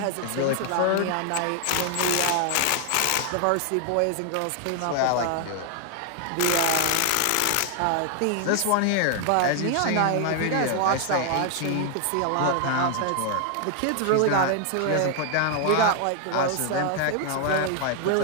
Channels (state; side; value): different; both; correlation 0.00